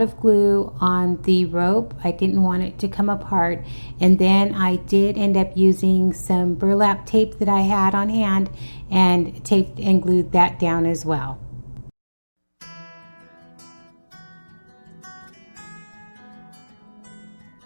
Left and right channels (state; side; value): inverted; both; correlation -1.00